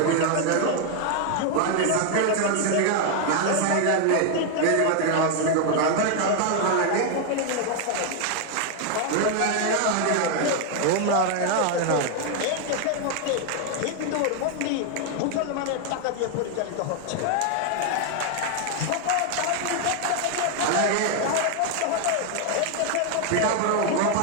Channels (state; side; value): different; both; correlation 0.00